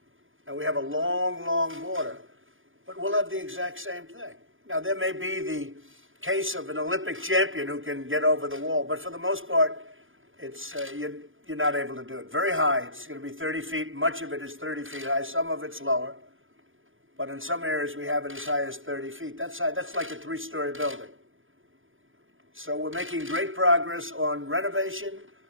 And we have a long, long border, but we'll have the exact same thing. Now, there may be the case of an Olympic champion who can get over the wall, but for the most part, it's you're not able to do it. Very high. It's going to be 30 feet. Much of it is 30 feet high. Some of it's lower. But in some areas, we have it as high as 30 feet. That's like a 3-story building. So we're making great progress on renovation,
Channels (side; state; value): left; late; 0.58 ms